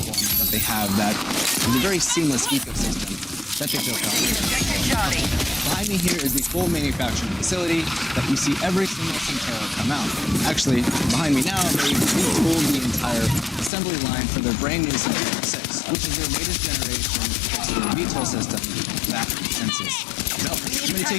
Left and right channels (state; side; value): drops out; right; at 13.7 s